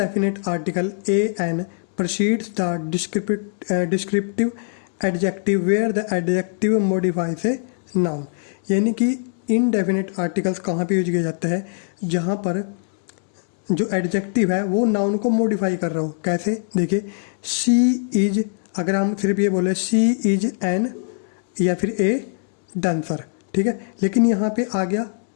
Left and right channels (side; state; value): right; silent; digital silence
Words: article A an precedes the descriptive adjective where the adjective modifies a noun। यानी कि इनडेफिनेट आर्टिकल्स कहाँ पे यूज किया जाता है? जहाँ पर जो एडजेक्टिव है वो नाउन को मॉडिफाई कर रहा हो। कैसे? देखिए शी इज, अगर हम सिर्फ ये बोले शी इज एन या फिर ए डांसर, ठीक है, लेकिन यहाँ पे आ गया